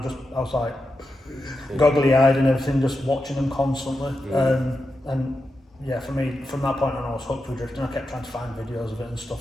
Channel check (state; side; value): normal; both; correlation 0.88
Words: like goggly eyed and everything, just watching them constantly. And yeah, for me, from that point on, I was hooked with drifting. I kept trying to find videos of it and